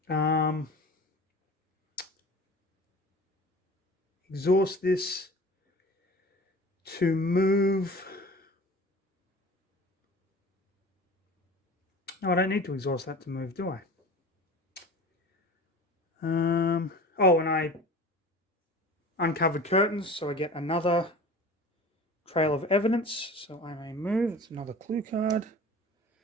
exhaust this to move. No, I don't need to exhaust that to move, do I? Oh, and uncovered curtains, so I get another trail of evidence. So I may move. It's another clue card.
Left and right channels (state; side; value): normal; both; correlation 0.39